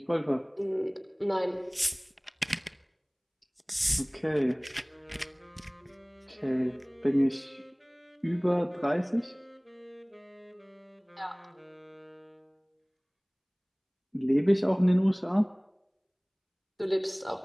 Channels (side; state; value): both; identical; correlation 1.00